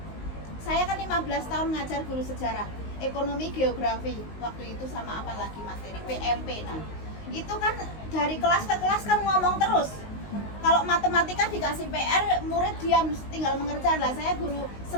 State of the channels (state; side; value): late; right; 19 ms